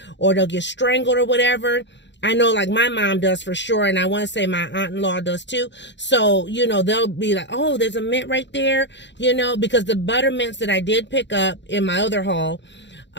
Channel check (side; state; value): right; late; 0.52 ms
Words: or they'll get strangled or whatever. I know like my mom does for sure. And I want to say my aunt-in-law does too. So, you know, they'll be like, oh, there's a mint right there, you know, because the butter mints that I did pick up in my other haul,